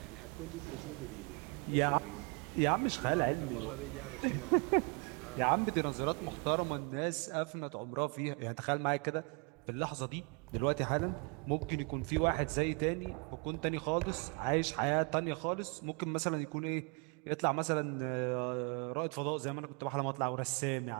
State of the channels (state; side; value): quieter; left; 33.1 dB